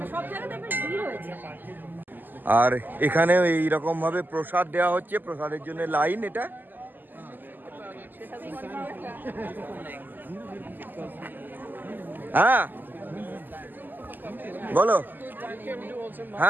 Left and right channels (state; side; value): late; left; 0.089 ms